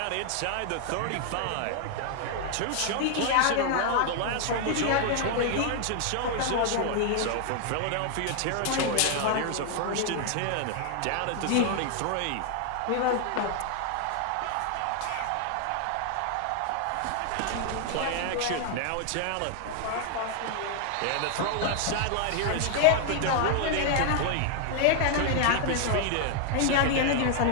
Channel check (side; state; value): both; different; correlation 0.00